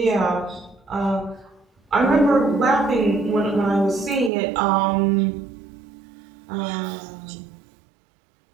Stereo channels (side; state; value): left; drops out; at 4.3 s